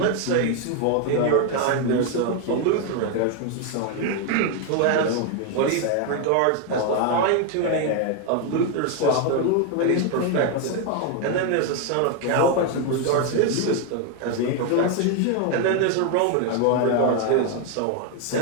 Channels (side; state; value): both; different; correlation 0.01